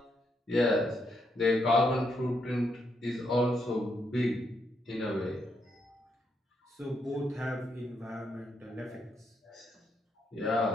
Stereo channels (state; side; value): normal; both; correlation 0.78